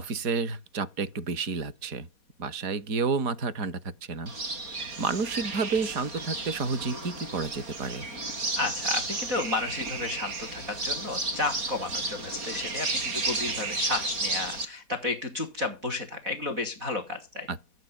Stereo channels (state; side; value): late; left; 4.1 ms